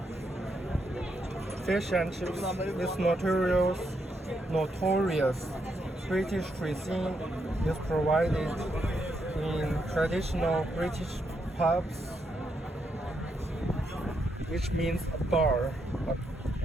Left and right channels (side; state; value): both; normal; correlation 0.80